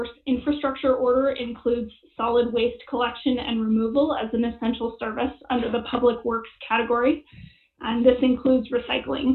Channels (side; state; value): both; identical; correlation 1.00